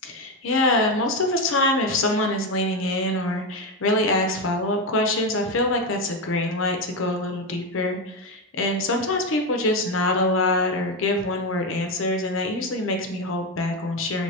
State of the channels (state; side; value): normal; both; correlation 0.12